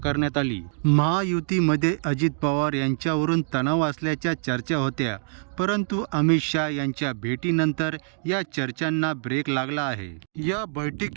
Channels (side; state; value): left; silent; digital silence